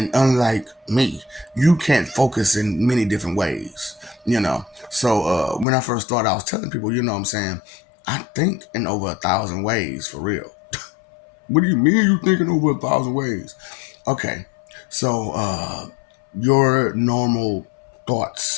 unlike me, you can't focus in many different ways, you know. So when I first started, I was telling people, you know what I'm saying, I think in over 1,000 ways for real. What do you mean you thinking over 1,000 ways? Okay. So your normal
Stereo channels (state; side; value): drops out; right; at 5.7 s